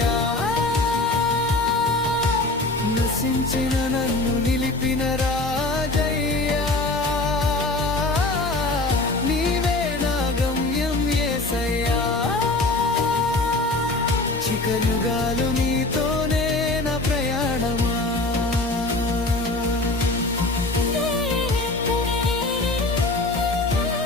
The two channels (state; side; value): quieter; right; 3.0 dB